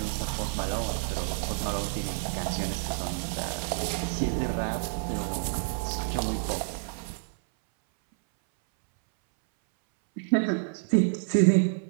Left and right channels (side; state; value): left; silent; 59 dB below the other